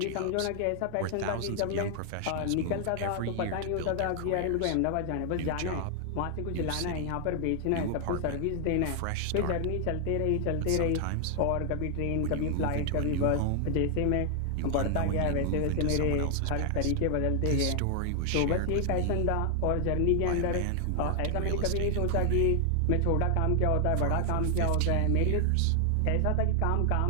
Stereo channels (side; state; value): both; different; correlation 0.00